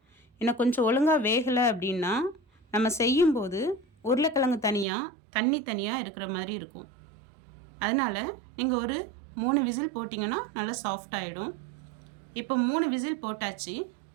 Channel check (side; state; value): left; drops out; at 4.9 s